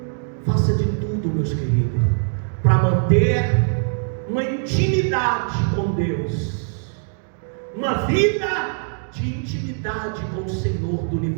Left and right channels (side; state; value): left; silent; 62 dB below the other